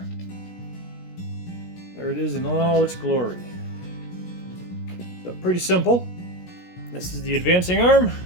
There it is in all its glory. So pretty simple. This is the advancing arm.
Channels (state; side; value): late; right; 17 ms